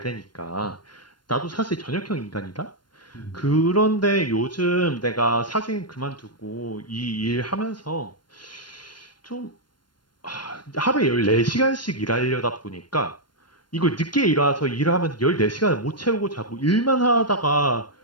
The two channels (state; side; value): late; right; 0.72 ms